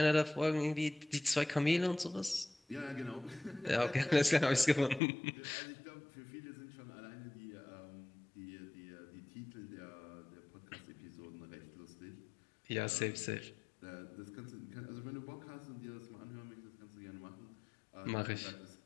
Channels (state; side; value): drops out; right; at 5.0 s